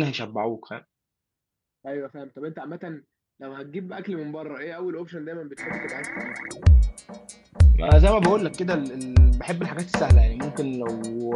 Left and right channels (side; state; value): both; identical; correlation 1.00